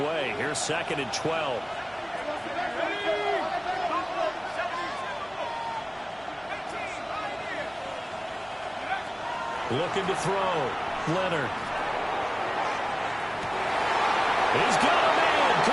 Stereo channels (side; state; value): both; identical; correlation 1.00